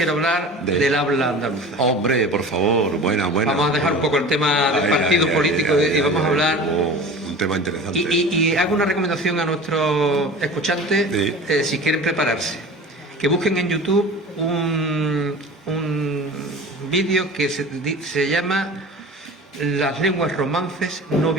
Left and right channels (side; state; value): both; normal; correlation 0.38